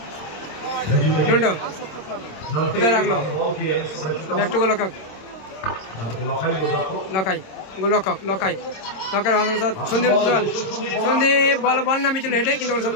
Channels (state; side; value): late; right; 26 ms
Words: কোথায় রাখলো ব্যাক টু গোলরক্ষক লখাই সন্দীপ বল নামে ছিল হেঁটে, কিন্তু